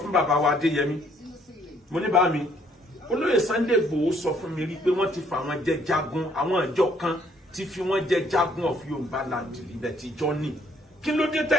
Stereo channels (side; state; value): both; normal; correlation 0.65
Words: bàbá wa Adéyẹmí mo ní bá mi olóyè Sunday Igboho sọ fún mi rí pé wọ́n ti fà wọ́n jẹ jagun àwọn ìjọ kan ti fi wọ́n jẹ jagun of Yorùbá land ibẹ̀ ti jọ ní kí ló dé